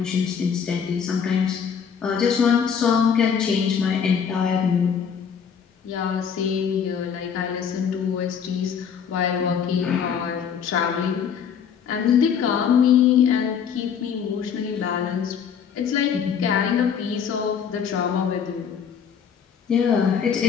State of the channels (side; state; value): right; quieter; 7.3 dB